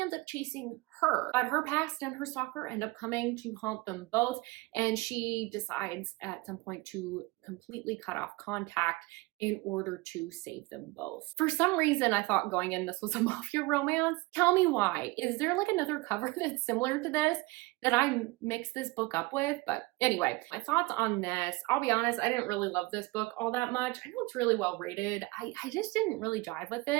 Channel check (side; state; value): left; quieter; 23.2 dB